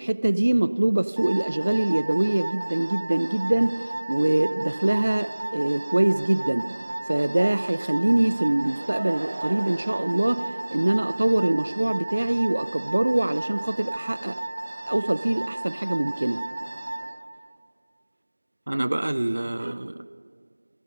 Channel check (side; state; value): both; inverted; correlation -1.00